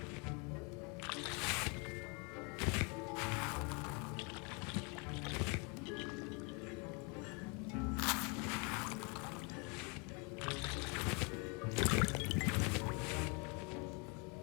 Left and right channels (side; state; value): right; quieter; 32.6 dB